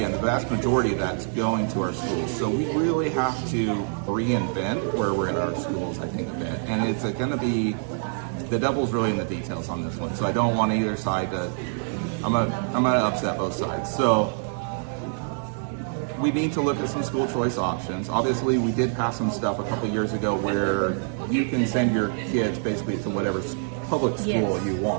the vast majority of that's going to our schools. So we really have to reinvent where we're in our schools, I think, a bit. And it's going to be, the devil's really in the details on this one. So I don't want either side to I'm gonna upset both sides. So we need to look at some school choice options. Obviously, we did pass some stuff a couple years ago where you can send your kids basically to whatever public school you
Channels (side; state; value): left; silent; 61 dB below the other